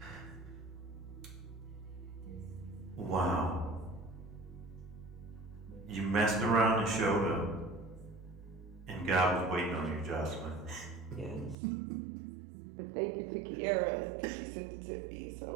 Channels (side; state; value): left; drops out; at 11.6 s